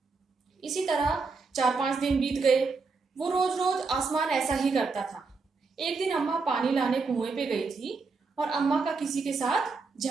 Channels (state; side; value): quieter; left; 4.3 dB